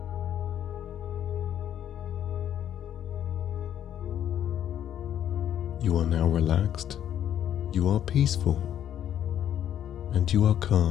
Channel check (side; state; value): right; quieter; 10.3 dB